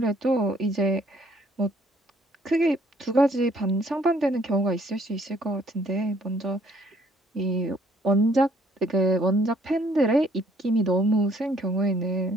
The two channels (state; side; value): normal; both; correlation 0.64